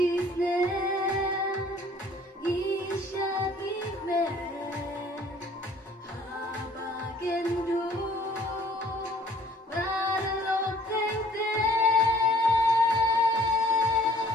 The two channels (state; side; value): normal; both; correlation 0.56